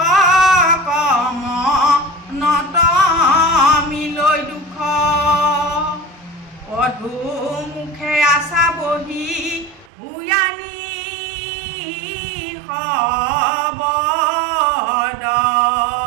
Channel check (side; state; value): left; drops out; at 9.9 s